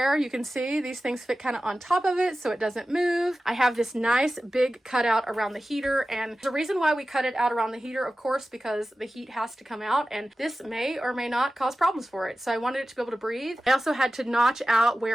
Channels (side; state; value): both; normal; correlation 0.95